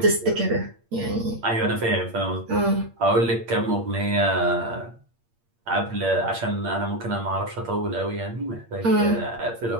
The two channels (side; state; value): left; late; 8.6 ms